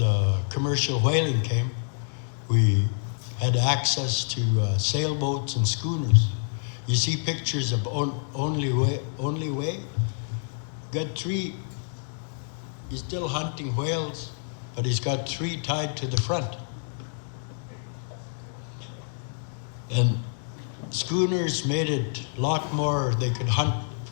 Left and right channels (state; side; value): silent; right; digital silence